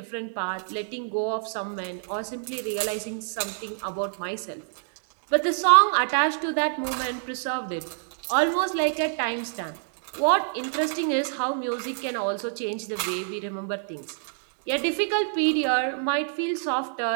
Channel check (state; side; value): silent; left; digital silence